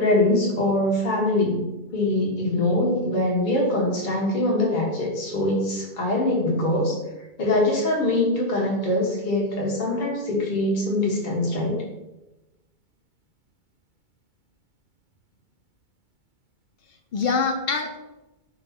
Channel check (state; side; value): late; right; 2.2 ms